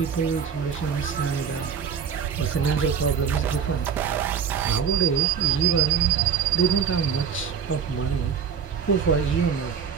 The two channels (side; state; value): left; quieter; 7.1 dB